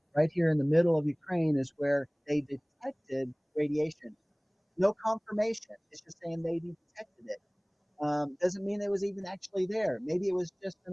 Right here in the middle of Ukraine is where they detected radiation. No confirmation. It's just saying they detected it. Doesn't mean it was even actually there. Maybe it was just an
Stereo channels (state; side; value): identical; both; correlation 1.00